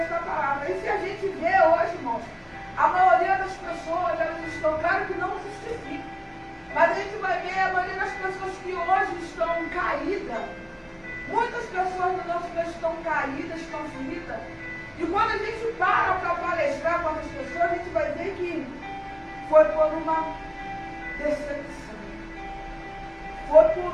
palavra. E se a gente vê hoje, irmãos, a maioria das pessoas, elas estão, claro que não justifica, mas a gente vai ver a maioria das pessoas que hoje estão caídas. Muitas pessoas no nosso meio estão caídas, estão feridas. E quando a gente para palestrar com essas pessoas, a gente vai ver que foi por uma decepção, foi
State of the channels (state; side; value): identical; both; correlation 1.00